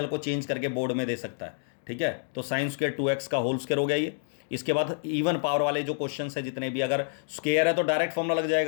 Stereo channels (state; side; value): silent; right; digital silence